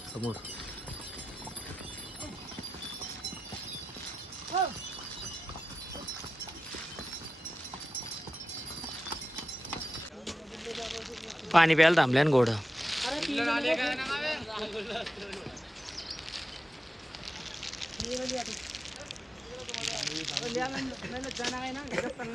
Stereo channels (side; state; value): both; normal; correlation 0.92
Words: समोर. पाणी प्यायला थांबल्यान घोडं.